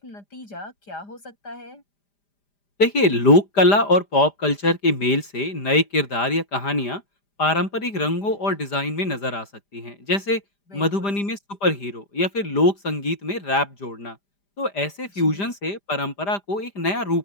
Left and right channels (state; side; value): late; right; 5.0 ms